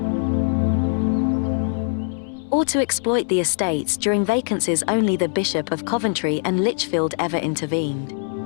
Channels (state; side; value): silent; right; 64 dB below the other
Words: or to exploit the estates during vacancies. Only the Bishop of Coventry and Lichfield ever intervened.